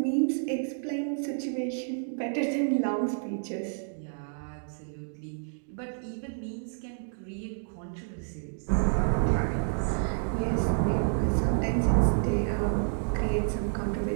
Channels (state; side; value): silent; left; digital silence